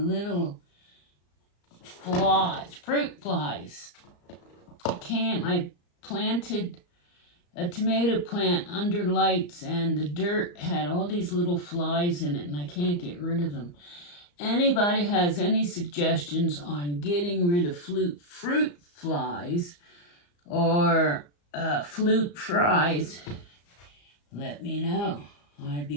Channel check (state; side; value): late; right; 34 ms